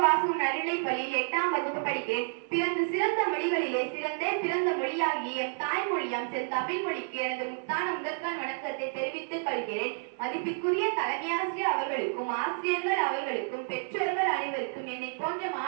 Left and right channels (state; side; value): silent; left; 58 dB below the other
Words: வாசகம் நடுநிலை பள்ளியில் 8ஆம் வகுப்பு படிக்கிறேன். பிறந்து சிறந்த மொழிகளிலே சிறந்தே பிறந்த மொழியாகிய எம் தாய்மொழியாம் தமிழ் மொழிக்கு எனது முத்தான முதற்கான வணக்கத்தை தெரிவித்துக் கொள்கிறேன். மதிப்பிற்குரிய தலைமையாசிரியர் அவர்களுக்கும் ஆசிரியர்கள் அவர்களுக்கும் பெற்றோர்கள் அனைவருக்கும் என்னை போன்ற